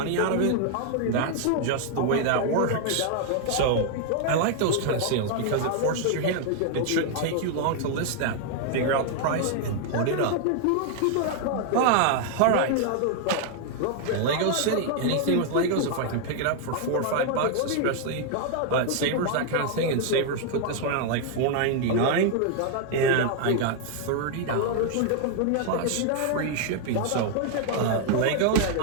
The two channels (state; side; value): different; both; correlation 0.00